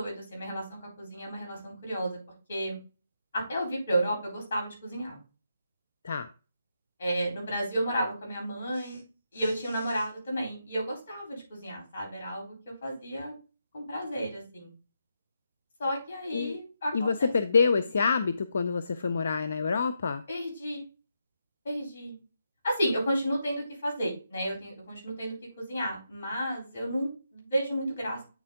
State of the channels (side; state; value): both; inverted; correlation -0.83